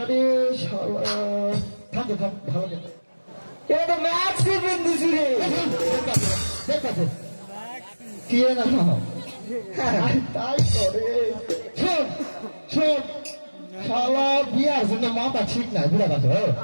শালা থাম থাম ভালো করে এটা তো ম্যাক্সি পিন্ডিস রে। দেখতে কি না তাই করে শোন শোন, শালা বিয়ার জন্য মাথা ঠিক নাই বুড়া কথা।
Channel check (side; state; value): both; inverted; correlation -1.00